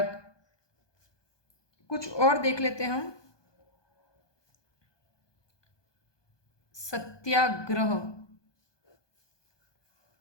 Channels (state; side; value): late; right; 1.2 ms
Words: कुछ और देख लेते हैं हम। सत्याग्रह,